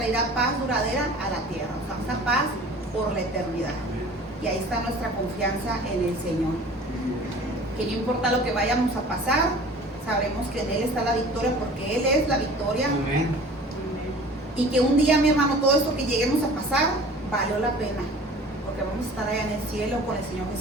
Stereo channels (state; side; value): normal; both; correlation 0.44